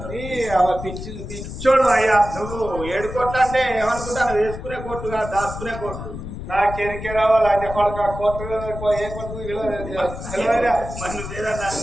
పిచ్చోడు అయ్యా నువ్వు 7 కోట్లు అంటే ఏమనుకుంటాను వేసుకునే కోర్టుగా దాచుకునే కోర్టు నాకేరికే రావాలి అన్ని కొడుకు కోర్టు ఏ కోర్టు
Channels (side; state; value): left; noise; rumble, 9 dB below the sound